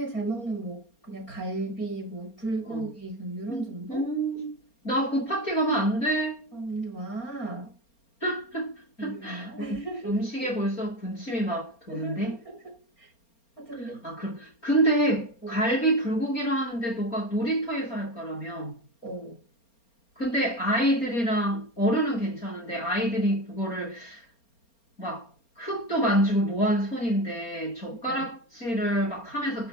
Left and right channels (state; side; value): late; right; 4.3 ms